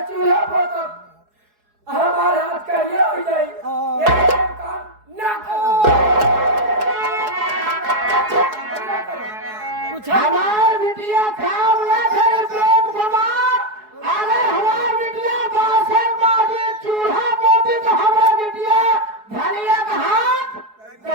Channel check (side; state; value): left; late; 4.7 ms